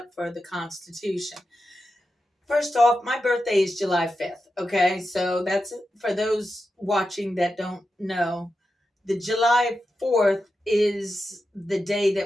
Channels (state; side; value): normal; both; correlation 0.90